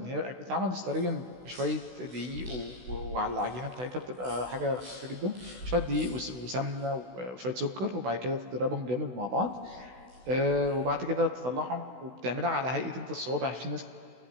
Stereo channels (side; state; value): left; late; 16 ms